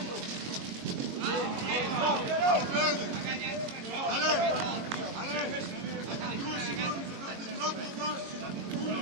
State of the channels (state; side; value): late; left; 22 ms